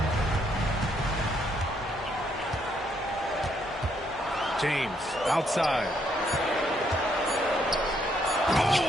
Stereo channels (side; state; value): both; normal; correlation 0.72